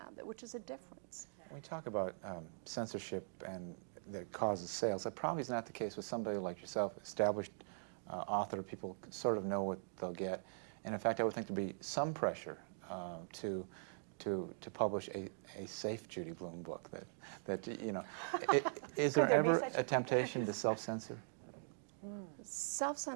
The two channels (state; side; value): silent; left; digital silence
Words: which is a difference. When we talk about censorship and that causes sales, that probably is not the case with somebody like yourself, established author. People sort of know what they'll get, and in fact, I would think there'd be some pressure to publish a safe Judy Blume book. That you know, is there ever a temptation to self-censor?